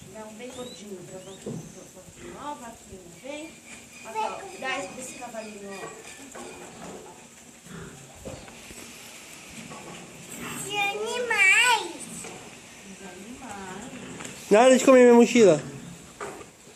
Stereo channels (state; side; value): identical; both; correlation 1.00